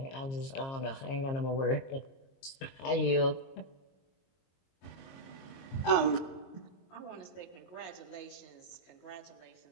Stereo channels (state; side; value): late; right; 22 ms